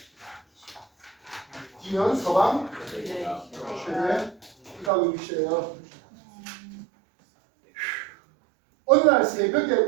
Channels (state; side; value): drops out; left; at 4.9 s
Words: D는 서방 최대 이각의 위치예요. 어느 날 새벽에